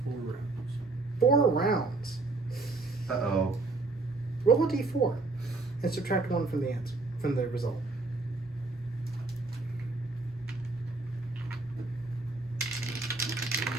4 rounds. 4 rounds. Uh-oh. Roll a d4 and subtract 1 from the answer, from the result.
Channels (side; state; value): left; quieter; 3.4 dB